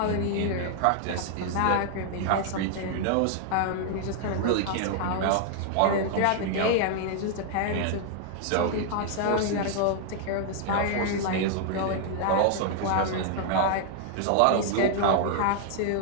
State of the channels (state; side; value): different; both; correlation 0.00